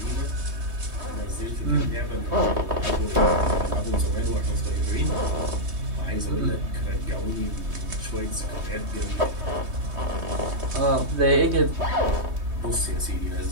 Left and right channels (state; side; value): late; left; 3.2 ms